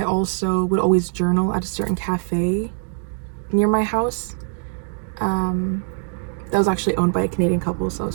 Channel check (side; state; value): left; silent; 64 dB below the other